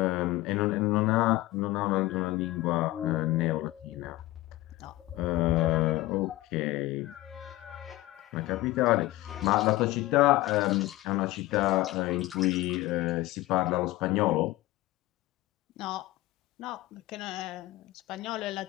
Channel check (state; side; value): quieter; right; 18.1 dB